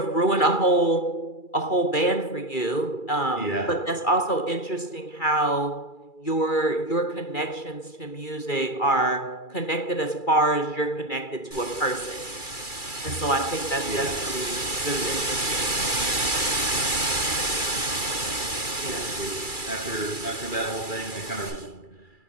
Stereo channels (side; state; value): right; late; 2.3 ms